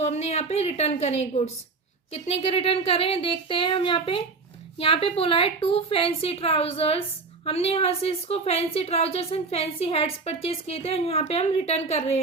हमने यहाँ पे रिटर्न करें गुड्स। कितने के रिटर्न करें देखते हैं हम। यहाँ पे बोला है 2 फैंसी ट्राउजर्स। हमने यहाँ से इसको fancy trousers and fancy hats purchase किए थे और यहाँ पे हम रिटर्न कर रहे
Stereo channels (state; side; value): quieter; left; 4.2 dB